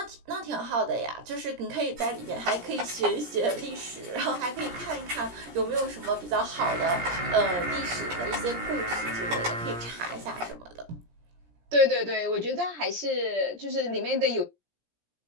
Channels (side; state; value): left; late; 17 ms